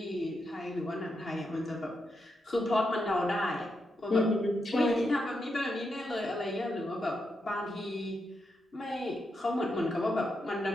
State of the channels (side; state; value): both; normal; correlation 0.84